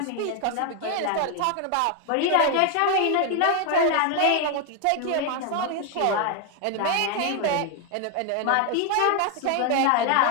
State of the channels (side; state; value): both; different; correlation 0.01